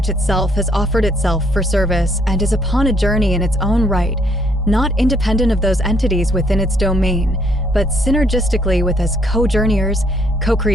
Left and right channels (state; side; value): normal; both; correlation 0.68